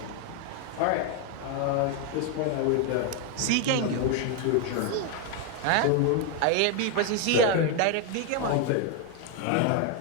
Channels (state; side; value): different; both; correlation 0.01